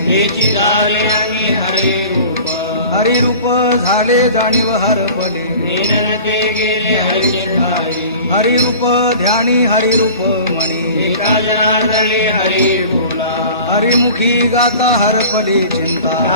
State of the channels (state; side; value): inverted; both; correlation -0.42